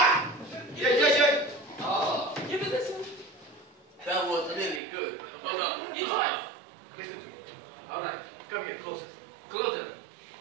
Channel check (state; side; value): drops out; left; at 4.8 s